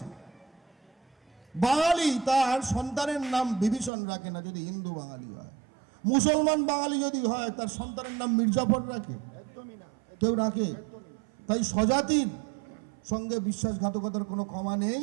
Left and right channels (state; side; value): drops out; left; at 3.9 s